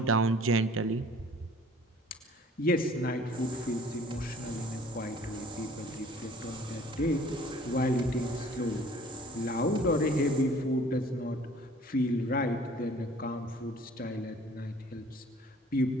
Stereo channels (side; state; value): both; normal; correlation 0.52